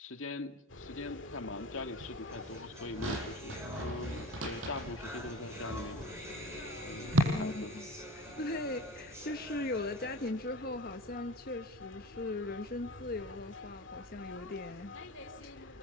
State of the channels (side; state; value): both; normal; correlation 0.38